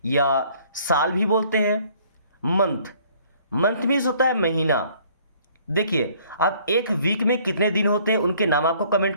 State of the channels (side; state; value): both; inverted; correlation -0.58